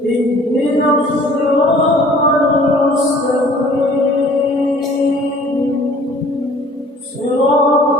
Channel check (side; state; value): both; normal; correlation 0.52